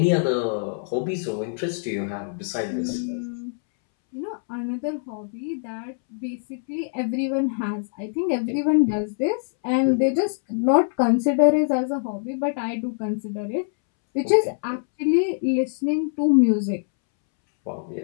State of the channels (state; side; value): silent; right; 63 dB below the other